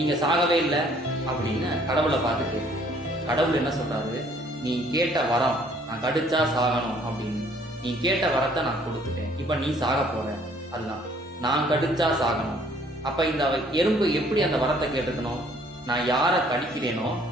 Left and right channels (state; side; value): normal; both; correlation 0.60